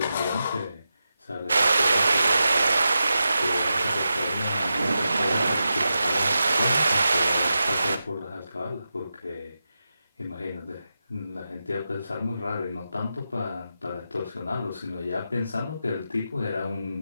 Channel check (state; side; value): inverted; both; correlation -0.90